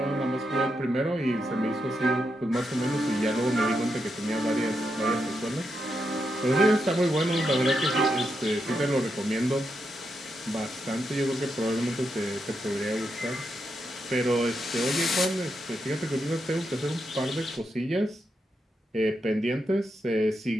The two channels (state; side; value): normal; both; correlation 0.84